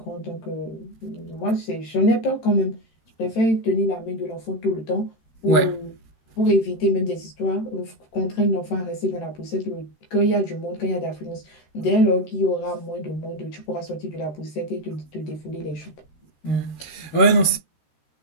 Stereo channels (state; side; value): late; right; 13 ms